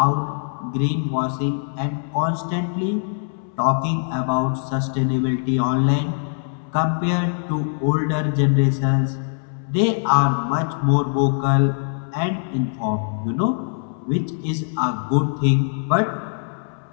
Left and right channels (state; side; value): silent; right; 64 dB below the other